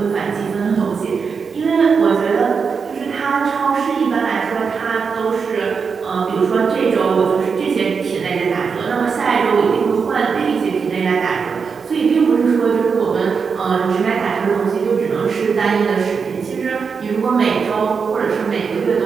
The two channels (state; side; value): quieter; left; 5.7 dB